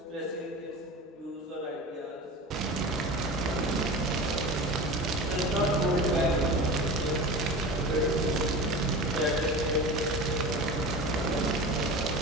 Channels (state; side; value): normal; both; correlation 0.32